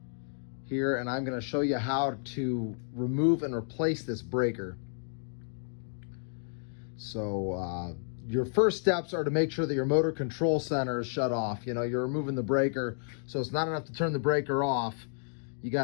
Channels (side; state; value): right; silent; digital silence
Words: here, and I'm going to show you how to remove and replace this breaker. So your first steps are to make sure that your motor control center is shut off. You know, you're removing the breaker, so it's not enough to turn the breaker off. You